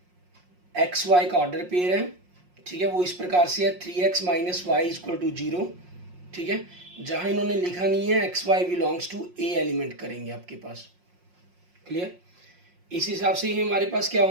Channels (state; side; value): late; left; 5.6 ms